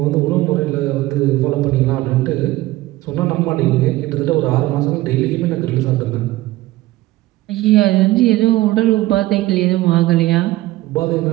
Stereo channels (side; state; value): left; quieter; 17.4 dB